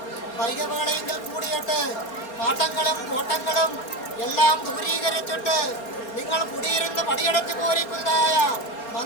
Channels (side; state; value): right; late; 4.2 ms